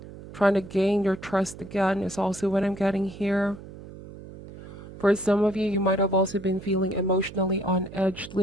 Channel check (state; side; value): noise; right; hum, 15 dB below the sound